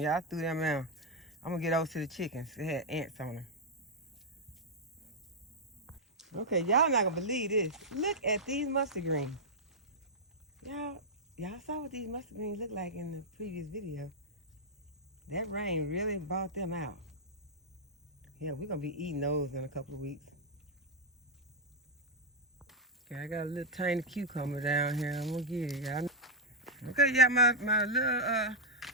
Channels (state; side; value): normal; both; correlation -0.02